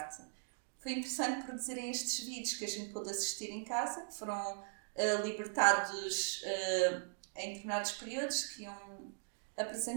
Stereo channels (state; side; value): silent; left; digital silence